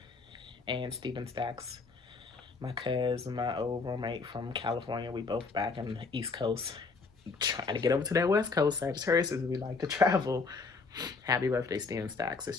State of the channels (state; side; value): quieter; right; 4.3 dB